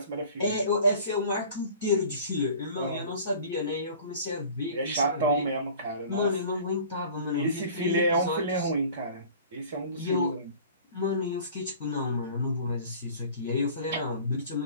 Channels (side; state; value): both; inverted; correlation -0.45